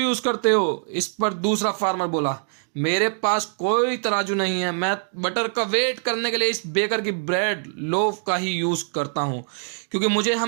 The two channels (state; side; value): silent; left; 63 dB below the other